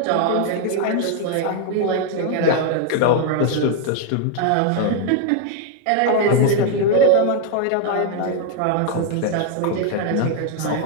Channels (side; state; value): both; different; correlation 0.00